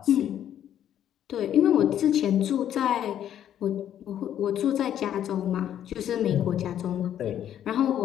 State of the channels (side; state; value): right; quieter; 10.5 dB